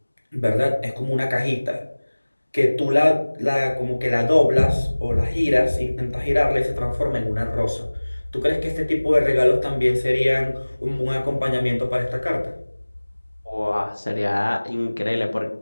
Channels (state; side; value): inverted; both; correlation -1.00